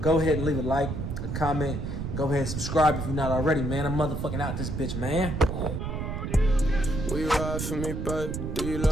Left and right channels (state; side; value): noise; right; rumble, 4 dB below the sound